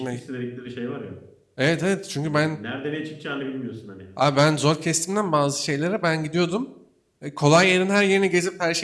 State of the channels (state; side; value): identical; both; correlation 1.00